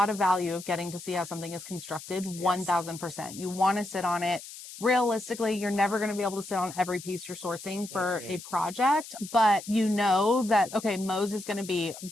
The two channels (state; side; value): noise; left; hiss, 14 dB below the sound